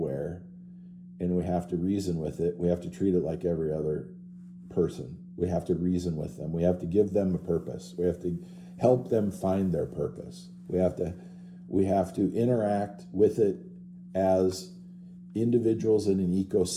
and we have to reason with it, we have to treat it like every other person. We have to reason with them. We have to give them a purpose. We have to help them find their purpose. We have to interact with it as individuals in an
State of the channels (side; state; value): both; identical; correlation 1.00